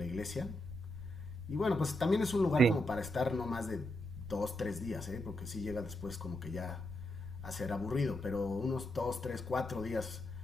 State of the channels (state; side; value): noise; right; rumble, 15 dB below the sound